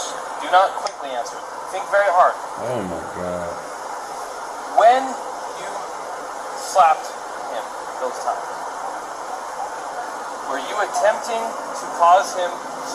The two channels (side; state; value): both; identical; correlation 1.00